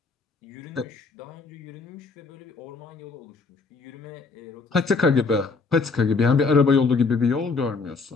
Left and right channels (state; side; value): quieter; right; 4.4 dB